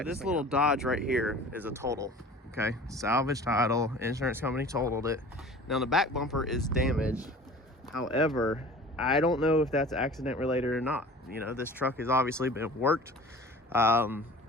this little Dodge right here is a total. Okay, salvage title, insurance company totaled it. Now the back bumper is damaged. However, I don't know if that's accident related or not. You know, this truck has obviously been worked.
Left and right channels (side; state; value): both; normal; correlation 0.43